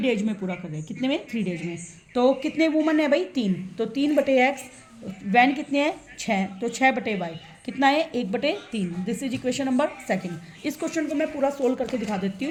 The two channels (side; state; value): both; identical; correlation 1.00